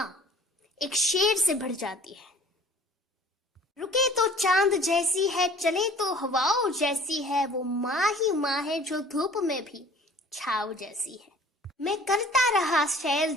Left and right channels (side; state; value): both; normal; correlation 0.50